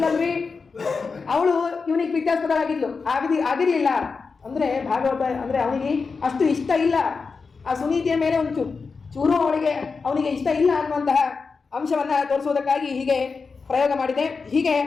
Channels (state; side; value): quieter; right; 4.8 dB